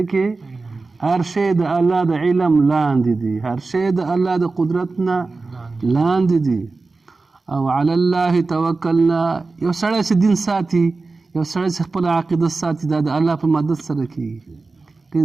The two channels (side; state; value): left; quieter; 3.8 dB